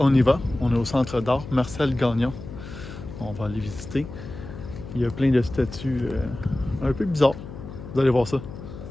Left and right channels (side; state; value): left; noise; hum, 12 dB below the sound